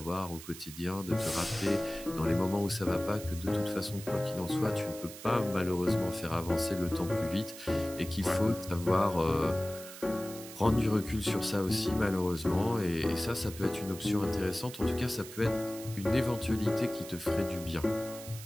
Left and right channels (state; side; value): noise; right; hiss, 14 dB below the sound